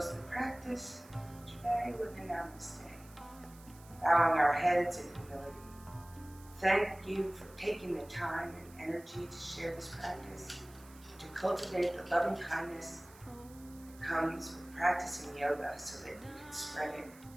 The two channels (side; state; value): right; noise; hiss, 23 dB below the sound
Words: the practice today with a namaste. Bowing our heads in humility. Thank you for taking the time and energy to share this practice, to cultivate the loving kindness that comes with practicing yoga so that you can spread it